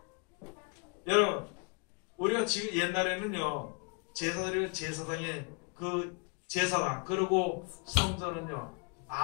여러분, 우리가 지금 옛날에는요, 제사장의 그 제사장, 그리고 성전은요,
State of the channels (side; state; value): right; quieter; 34.5 dB